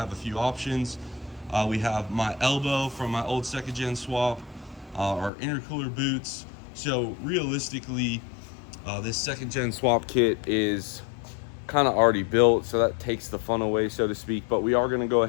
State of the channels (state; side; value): drops out; right; at 5.3 s